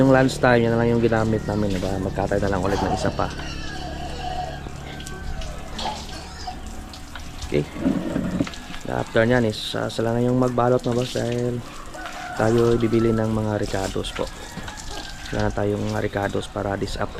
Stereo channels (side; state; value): both; identical; correlation 1.00